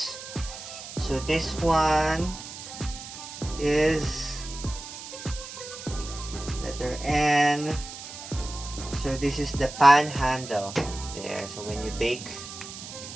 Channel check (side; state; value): right; noise; hiss, 11 dB below the sound